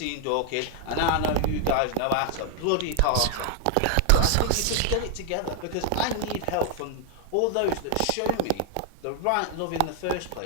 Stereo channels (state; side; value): different; both; correlation 0.00